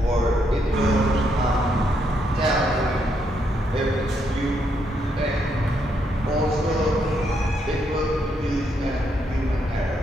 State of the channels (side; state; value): both; normal; correlation 0.76